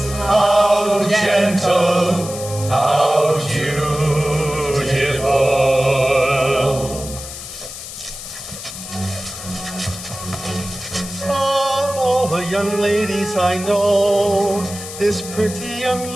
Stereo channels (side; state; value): left; noise; hiss, 11 dB below the sound